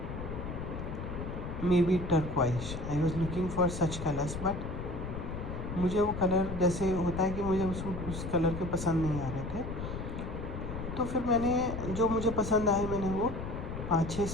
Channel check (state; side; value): noise; left; rumble, 6 dB below the sound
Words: may be turquoise. I was looking for such colours but मुझे वो कलर जैसे होता है कि मुझे उस कलर के पसंद नहीं आ रहे थे, तो फिर मैंने जो मुझे पसंद आए मैंने वो 5-6